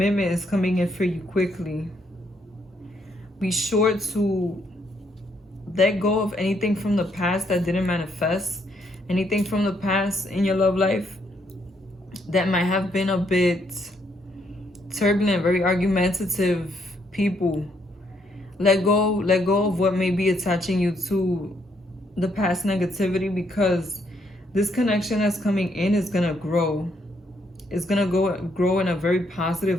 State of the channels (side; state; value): both; normal; correlation 0.73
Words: is coming in for you quickly. Be sure to let go of anything from the past that didn't manifest. Anything from the past in your love life that might have been a bit turbulent, very argumentative people. Let go of what may be attaching you to the past negativity, because This connection that's coming in is going to grow. It's going to grow in a very